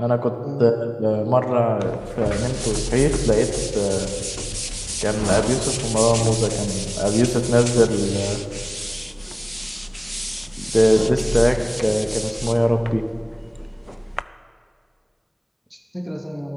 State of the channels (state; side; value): identical; both; correlation 1.00